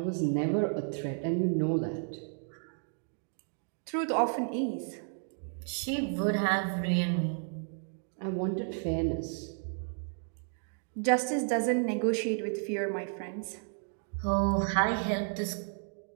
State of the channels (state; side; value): silent; left; 55 dB below the other